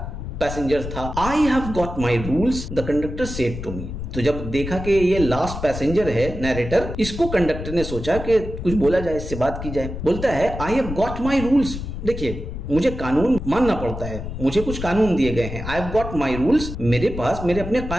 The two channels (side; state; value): left; noise; rumble, 7 dB below the sound